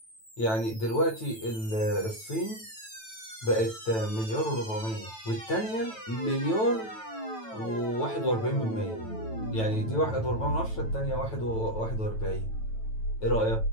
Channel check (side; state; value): right; late; 9.1 ms